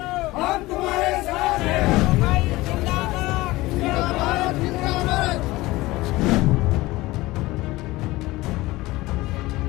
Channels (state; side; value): quieter; right; 19.4 dB